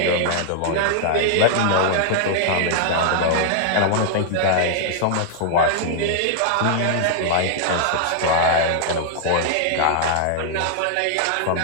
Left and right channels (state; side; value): different; both; correlation -0.01